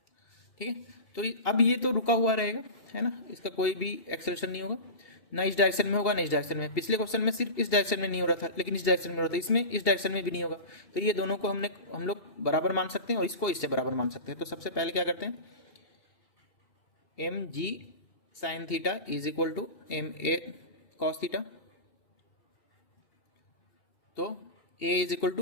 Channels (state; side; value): late; right; 2.8 ms